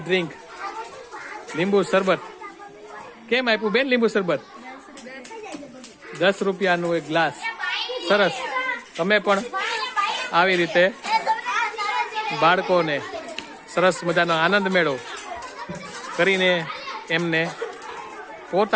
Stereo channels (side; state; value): both; identical; correlation 1.00